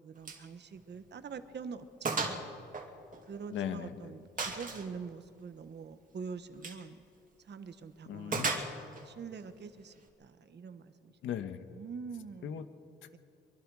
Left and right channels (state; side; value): normal; both; correlation 0.31